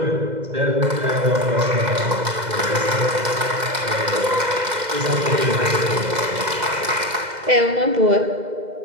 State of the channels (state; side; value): late; left; 2.0 ms